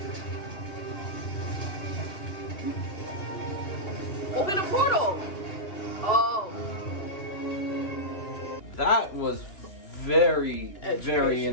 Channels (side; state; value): right; late; 2.7 ms